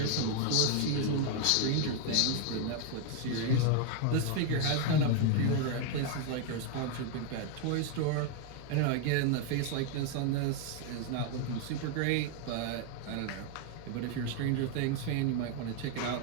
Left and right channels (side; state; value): both; different; correlation 0.01